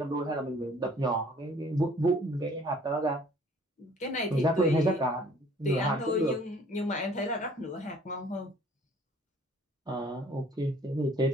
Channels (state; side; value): normal; both; correlation 0.56